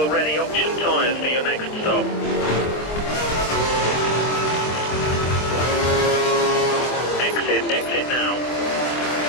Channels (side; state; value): right; late; 24 ms